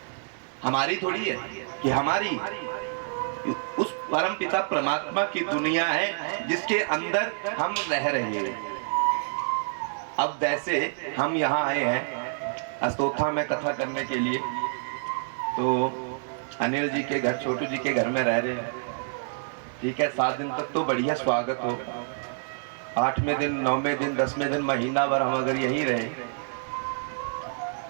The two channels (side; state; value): left; silent; digital silence